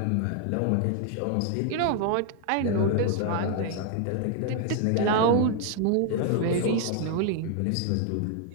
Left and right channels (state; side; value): different; both; correlation 0.00